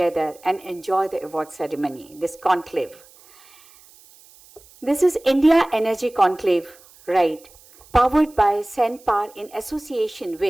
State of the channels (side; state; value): right; noise; hiss, 26 dB below the sound